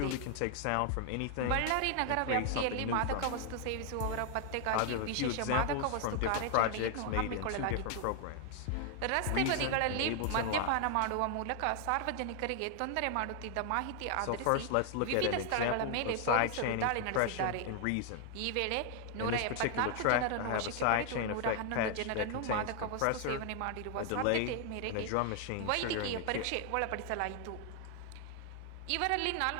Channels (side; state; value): both; different; correlation 0.00